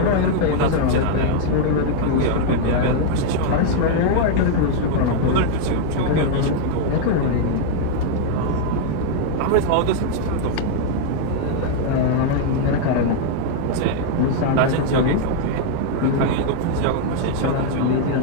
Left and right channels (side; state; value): both; different; correlation 0.00